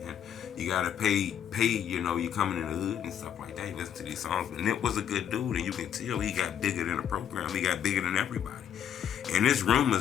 And you gotta pay, you know, you coming in the hood and stuff like that. You listen to these songs. But Nip was a good dude, and you can tell he got bigger than the program. He got bigger than everybody. And there's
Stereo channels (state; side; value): quieter; right; 9.2 dB